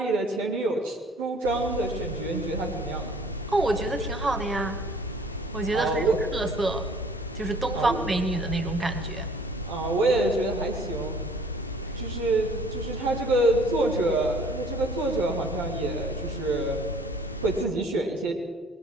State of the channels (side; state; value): both; normal; correlation 0.54